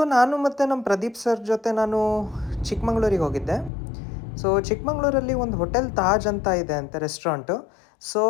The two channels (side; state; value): right; drops out; at 3.7 s